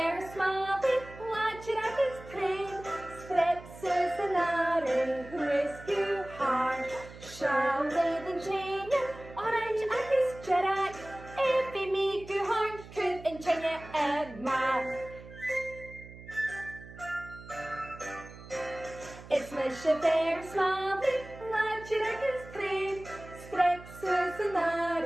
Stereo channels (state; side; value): noise; right; hum, 16 dB below the sound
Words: watch it at his train, Sprepses and Are, rescue hard, shall they the chain, orange at his Jerak, if he make you hard, could and chain a man. It's Misha Fear-Smàlaidh, watch it at his train, Sprepses and Are,